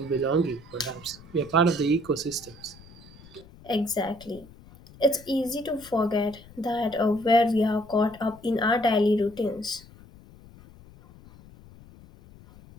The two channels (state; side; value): noise; left; rumble, 22 dB below the sound